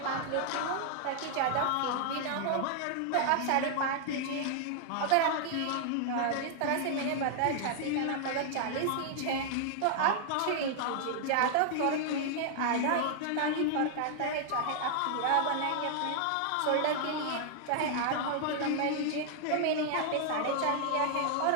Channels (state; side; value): different; both; correlation 0.00